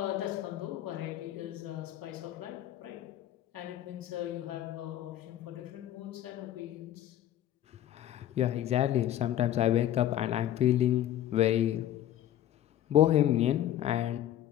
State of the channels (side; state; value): right; quieter; 12.1 dB